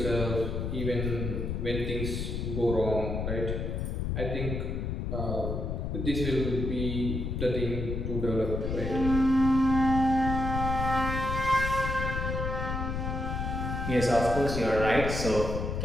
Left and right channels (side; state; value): left; noise; rumble, 2 dB below the sound